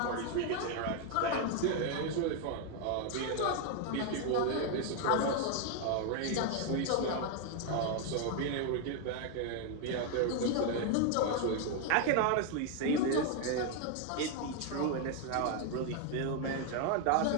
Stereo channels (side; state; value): both; different; correlation 0.01